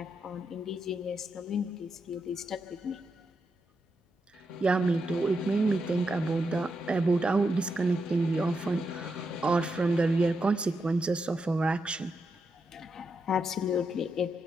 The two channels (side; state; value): both; normal; correlation 0.84